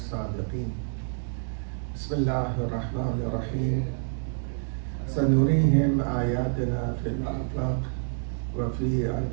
بسم الله الرحمن الرحيم. سنريهم آياتنا في الآفاق وفي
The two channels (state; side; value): silent; left; digital silence